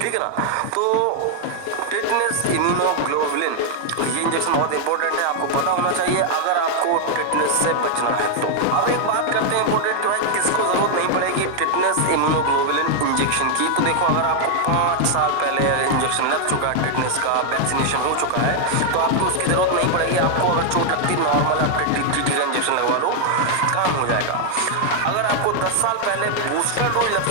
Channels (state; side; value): different; both; correlation 0.00